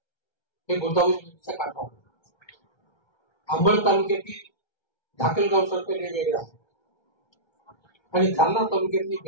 हे गोदावरी नदीच्या काठावर, अंबड तालुक्यातील धाकलगाव सर्कल हे वेगळं आहे आणि जालना तालुक्यातली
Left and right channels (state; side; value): late; right; 1.3 ms